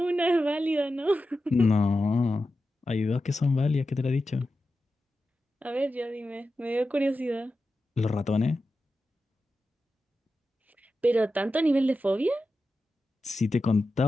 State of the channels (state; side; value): normal; both; correlation 0.91